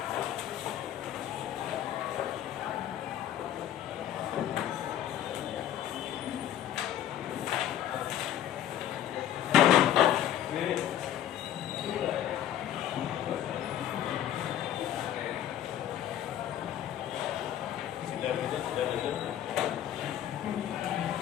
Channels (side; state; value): right; quieter; 11.3 dB